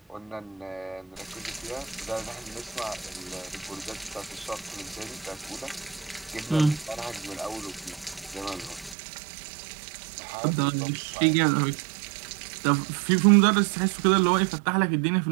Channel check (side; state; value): left; drops out; at 9.0 s